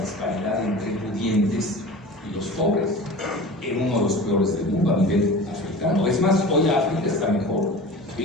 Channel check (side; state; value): both; normal; correlation 0.36